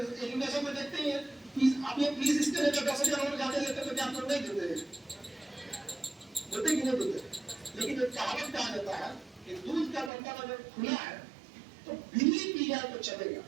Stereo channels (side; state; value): left; drops out; at 10.1 s